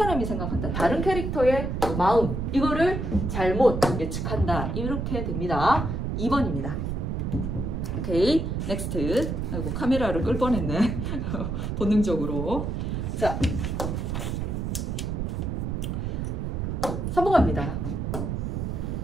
생각한다. 다른 캐릭터의 마음 이거를 잘못 예측한다. 이렇게 됩니다. 2번입니다. 오케이, 넥스트. 아이고 카메라를 끌 뻔했네. 본능적으로. 자, 3번 갑니다.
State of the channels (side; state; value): right; noise; rumble, 2 dB below the sound